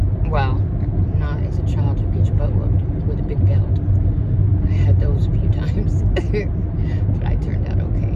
Well, not as a child, you get your butt whooped with a big belt. I had those a few times. But I turned out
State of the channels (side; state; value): both; identical; correlation 1.00